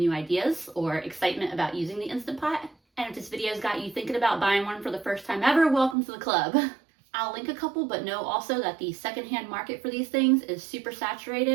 ideas or excitement about using the Instant Pot. And if this video's got you thinking about buying one for the first time ever, welcome to the club. I'll link a couple, but know also that the secondhand market for these things is super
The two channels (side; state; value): left; drops out; at 6.0 s